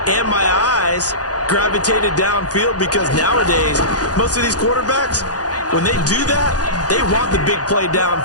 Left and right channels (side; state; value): right; late; 0.68 ms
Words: and my eyes gravitated downfield, because nowadays, most of these quarterbacks, when they do that, they want the big play